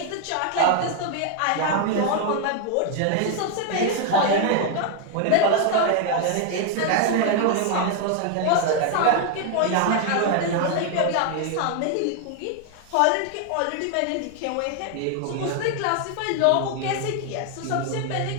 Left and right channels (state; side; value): different; both; correlation 0.00